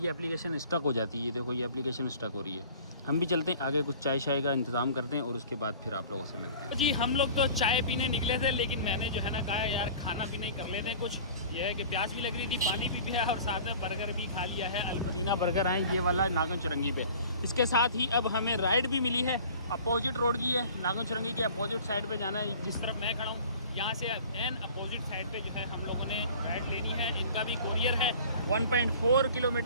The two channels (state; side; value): inverted; both; correlation -0.45